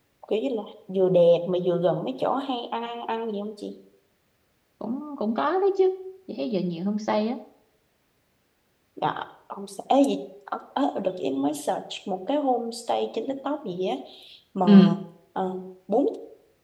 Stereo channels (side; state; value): both; identical; correlation 1.00